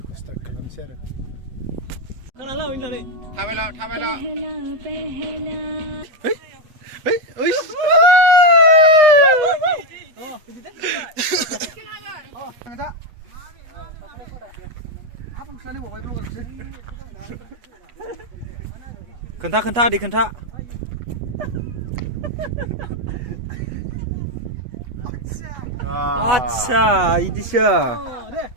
स्टार्ट खालामसै आरो खोनाला होननानै थाबायला ओइ ओइ खोन्था आदै खोन्था आच्छा इदिसो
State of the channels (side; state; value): left; late; 8.2 ms